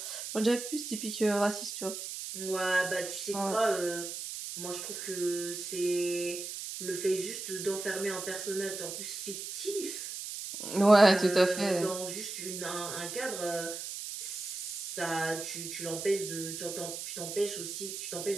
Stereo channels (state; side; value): noise; right; hiss, 7 dB below the sound